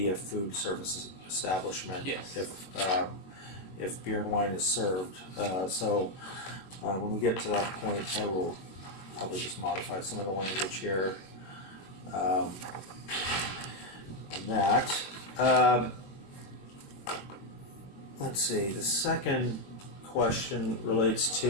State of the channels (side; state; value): right; late; 21 ms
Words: a food service establishment. Yes. If beer and wine is served. So when we get to that point, I will probably just modify some of the language here. on that. Let's see, the second question relates